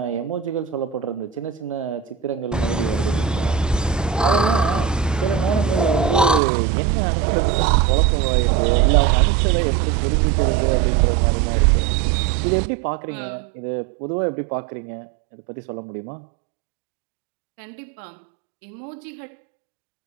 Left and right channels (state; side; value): drops out; left; at 6.4 s